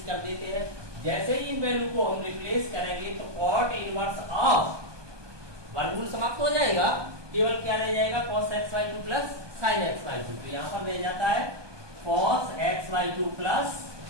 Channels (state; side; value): late; left; 1.2 ms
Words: कर देते हैं। जैसे ही इन वैल्यू को हम रिप्लेस करेंगे तो कॉट इनवर्स ऑफ वर्गमूल समाप्त हो जाएगा, केवल क्या रह जाएगा cos x by 2 plus sine x by 2। तो यहाँ पर रह जाता है cos x by 2 plus